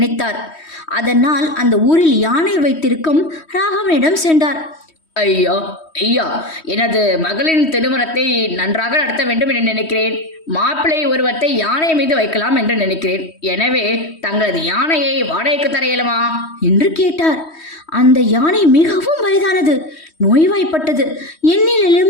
அதனால் அந்த ஊரில் யானை வைத்திருக்கும் ராகவனிடம் சென்றார். ஐயா ஐயா, எனது மகளின் திருமணத்தை நன்றாக நடத்த வேண்டும் என்று நினைக்கிறேன். மாப்பிள்ளை உருவத்தை யானை மீது வைக்கலாம் என்று நினைக்கிறேன். எனவே தங்களது யானையை வாடகைக்கு தர இயலுமா என்று கேட்டார். அந்த யானை மிகவும் வயதானது, நோய்வாய்ப்பட்டது,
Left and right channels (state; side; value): late; right; 3.1 ms